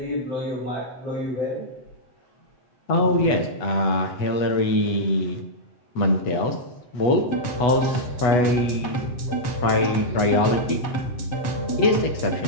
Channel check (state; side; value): late; right; 8.1 ms